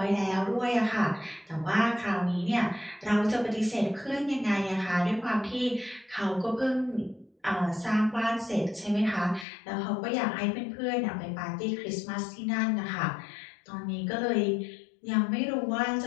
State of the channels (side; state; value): right; drops out; at 9.5 s